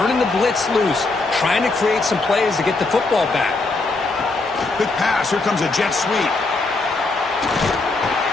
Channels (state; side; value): quieter; right; 3.5 dB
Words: the blitz loose, trying to create some plays to get the football back. Quick pass. Here comes a jet sweep.